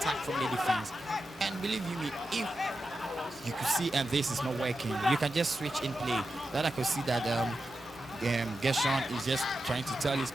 from the defense. And believe you me, if you could see and this is not working, you can just switch in play. That I could see that Gershon is just trying to tell his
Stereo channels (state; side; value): normal; both; correlation 0.90